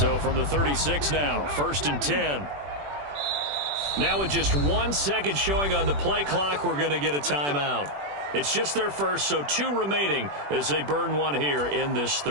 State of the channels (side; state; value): left; late; 21 ms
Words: from the 36 now, 1st and 10. Now with just 1 second showing on the play clock, we're going to get a timeout. It's just their first, so 2 remaining as they burn one here in this